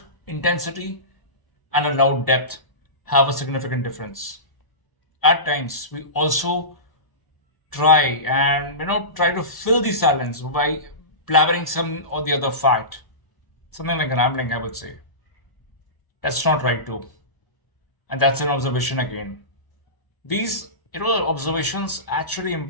intensity and a loud depth have a significant difference. At times, we also try to fill the silence by blabbering some or the other fact. Something like rambling, I would say. That's not right too. And that's an observation again. These observations actually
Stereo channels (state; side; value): late; right; 1.0 ms